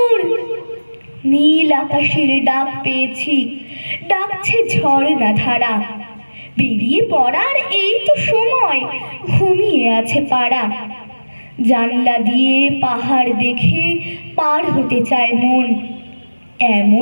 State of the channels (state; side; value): inverted; both; correlation -1.00